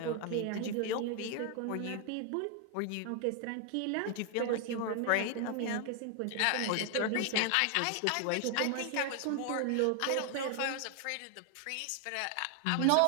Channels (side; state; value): both; different; correlation 0.00